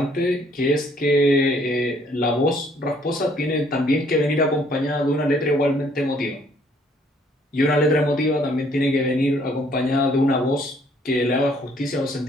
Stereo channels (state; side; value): normal; both; correlation 0.63